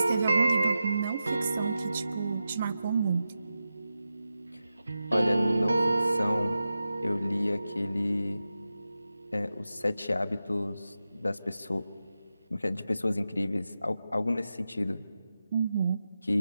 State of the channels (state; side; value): inverted; both; correlation -0.91